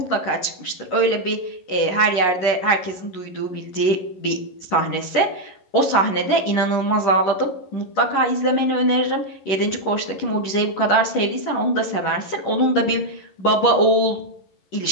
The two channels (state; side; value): late; right; 11 ms